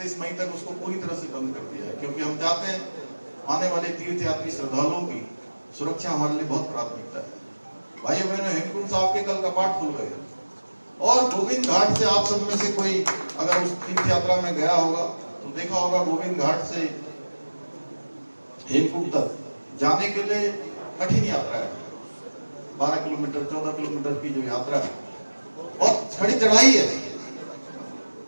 मई तक उसको पूरी तरह से बंद कर दिया है, क्योंकि हम चाहते हैं आने वाले तीर्थयात्री श्रद्धालुओं की सुरक्षा हमारे लिए बहुत प्राथमिकता है। भाइयों बहनों, हेमकुंड साहब के कल कपाट खुल गए और गोविंद घाट से आप सब में से कोई अगर उस तीर्थ यात्रा में गया होगा तो देखा होगा, गोविंद घाट से हेमकुंड तक जाने के लिए कठिन यात्रा है। 12 किलोमीटर 14 किलोमीटर की जो यात्रा है और खड़ी चढ़ाई है,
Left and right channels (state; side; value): inverted; both; correlation -1.00